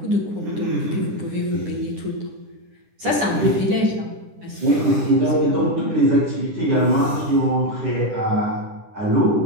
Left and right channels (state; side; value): late; left; 9.8 ms